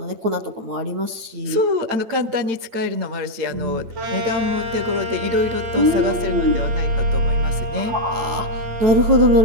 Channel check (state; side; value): late; left; 9.2 ms